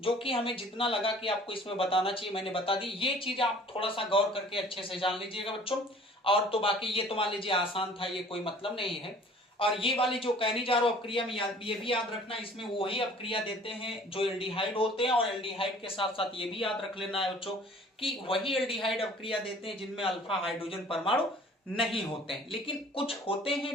जो कि हमें जितना लगा कि आपको इसमें बताना चाहिए मैंने बता दी। ये चीज आप थोड़ा सा गौर करके अच्छे से जान लीजिएगा बच्चों। और तो बाकी ये तो मान लीजिए आसान था, ये कोई मतलब नहीं है। और ये वाली जो कैनिजारो अपक्रिया में ये भी याद रखना, इसमें वही अपक्रिया देते हैं जो एल्डिहाइड होते हैं, और एल्डिहाइड के साथ साथ ये भी याद रख लेना है बच्चों कि वही एल्डिहाइड अपक्रिया देते हैं जिनमें अल्फा हाइड्रोजन परमाणु नहीं होते हैं। लेकिन कुछ होते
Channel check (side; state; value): both; normal; correlation 0.50